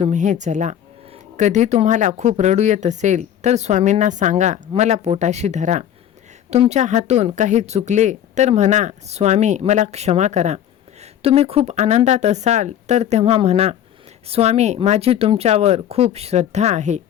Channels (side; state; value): right; quieter; 10.5 dB